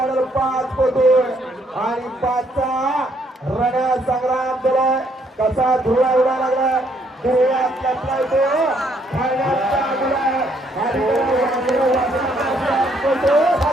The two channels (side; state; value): both; normal; correlation 0.69